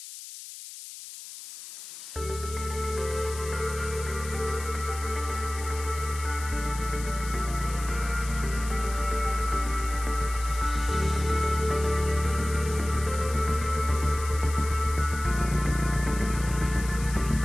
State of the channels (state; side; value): noise; left; hiss, 12 dB below the sound